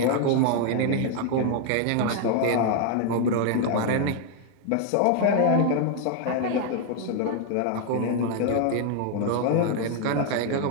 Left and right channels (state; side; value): different; both; correlation 0.00